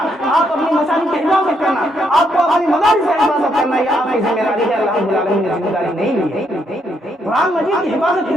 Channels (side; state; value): both; normal; correlation 0.75